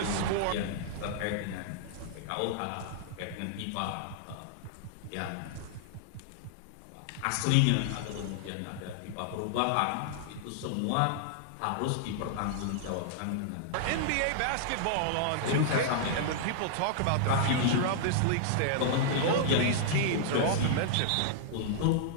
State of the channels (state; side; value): different; both; correlation -0.01